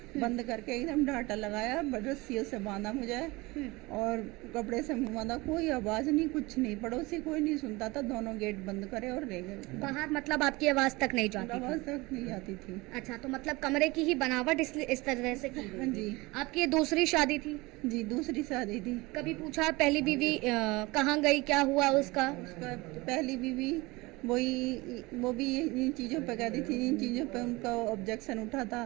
बंद करके एकदम डांटा लगाया, रस्सियों से बांधा मुझे और कपड़े से मुंह बांधा। कोई आवाज नहीं, कुछ नहीं, पड़ोसी कोई नहीं सुनता था। दोनों गेट बंद करे और रह गए बाहर। मतलब आपकी आवाज तक नहीं जाती? आवाज तक नहीं जाती थी। अच्छा, तो मतलब कमरे की ही बनावट इस तरह से की? हाँ जी। आपकी ये दूसरी शादी थी? जी, दूसरी शादी थी। कभी पूछा पहली बीवी कहाँ गई, क्या हुआ उसका? पहली बीवी वो भी इन चीज़ों पे कहती थी, इन चीज़ों पे उनका ऑब्जेक्शन उठा था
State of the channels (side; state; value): left; quieter; 22.8 dB